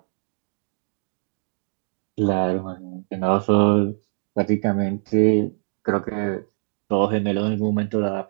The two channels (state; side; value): silent; left; digital silence